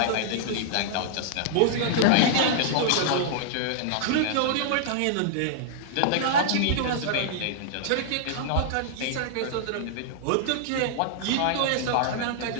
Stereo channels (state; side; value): different; both; correlation -0.01